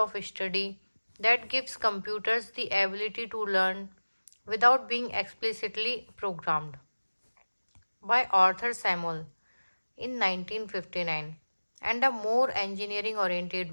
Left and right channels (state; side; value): inverted; both; correlation -1.00